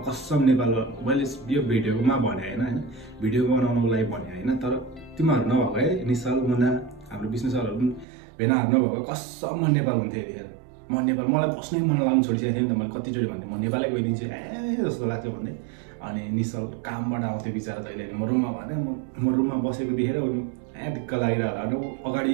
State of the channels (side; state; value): left; drops out; at 8.1 s